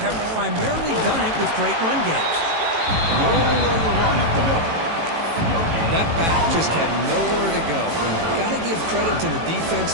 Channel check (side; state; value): left; late; 18 ms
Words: primarily done it with great run games. Roller the run up the middle. That back just had nowhere to go. Got to give credit to the